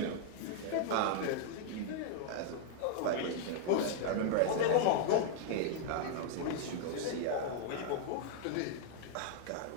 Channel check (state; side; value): different; both; correlation -0.01